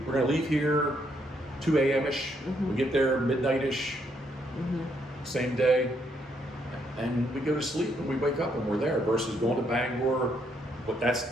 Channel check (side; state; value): both; normal; correlation 0.74